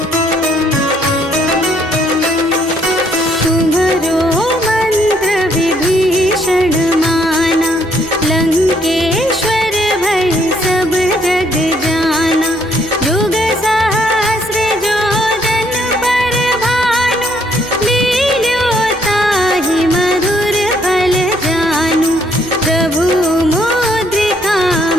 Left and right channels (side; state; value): both; normal; correlation 0.68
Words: तुम्हरो मंत्र विभीषण माना, लंकेश्वर भय सब जग जाना, युग सहस्र जो जन पर भानु, लील्यो ताहि मधुर फल जानु, प्रभु मुद्रिका